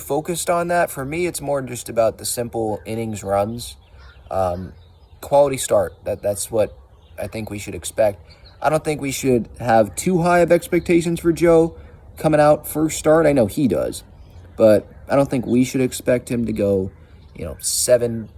on that. For me, it's more just about the simple innings runs. Quality start, that's what I think we should expect. I don't think we should have too high of expectations for Joe coming out first start. I know he does, but I don't think we should expect him to go, 7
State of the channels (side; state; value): both; identical; correlation 1.00